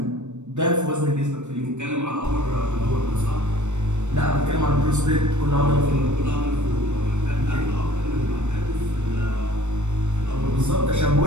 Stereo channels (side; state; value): left; late; 0.84 ms